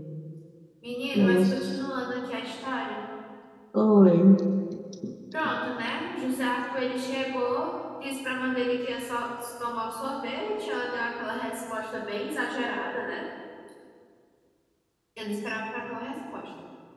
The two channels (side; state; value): both; identical; correlation 1.00